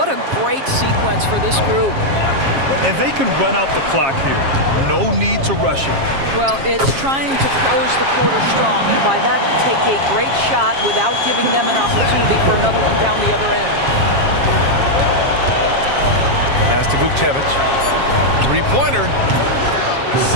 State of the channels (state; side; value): late; left; 7.4 ms